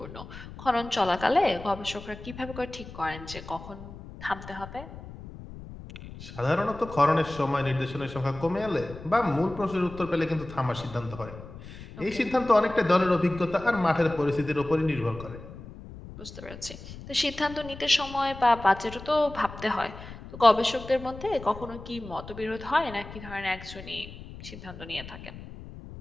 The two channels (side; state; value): left; noise; rumble, 14 dB below the sound